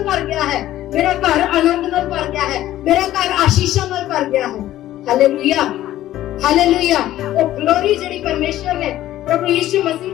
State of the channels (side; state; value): right; quieter; 13.8 dB